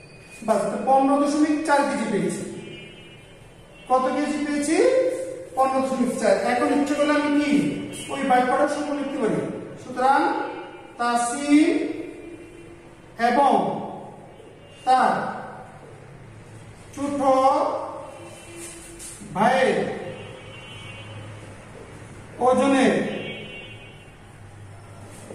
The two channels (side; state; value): both; identical; correlation 1.00